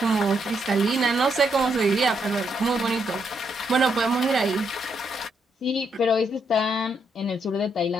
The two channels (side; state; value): both; normal; correlation 0.77